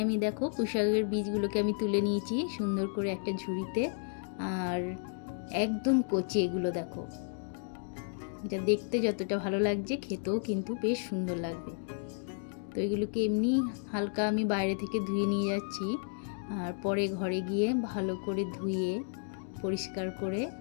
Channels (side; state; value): right; silent; 56 dB below the other